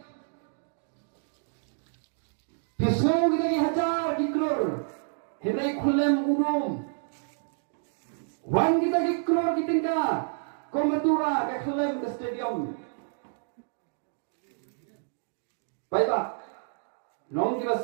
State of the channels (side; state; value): left; silent; digital silence